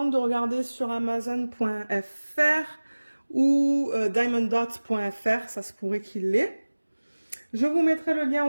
de regarder sur Amazon.fr ou diamonddots.fr, ça se pourrait qu'il l'ait. Je vous mettrai le lien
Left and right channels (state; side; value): inverted; both; correlation -1.00